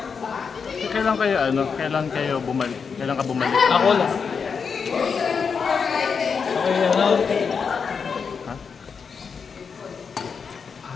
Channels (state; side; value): quieter; right; 5.9 dB